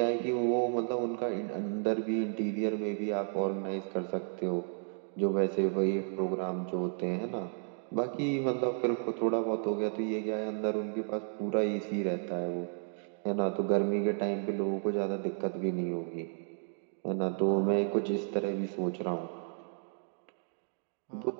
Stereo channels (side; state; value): left; silent; 56 dB below the other